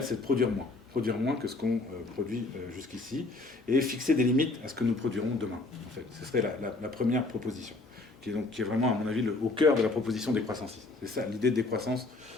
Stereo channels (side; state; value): right; quieter; 3.2 dB